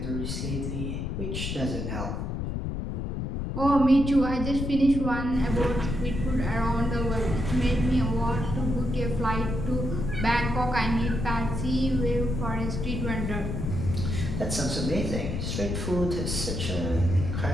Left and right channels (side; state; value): left; noise; rumble, 3 dB below the sound